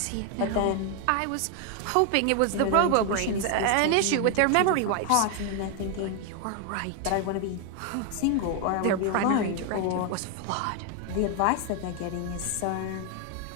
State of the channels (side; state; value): both; different; correlation 0.01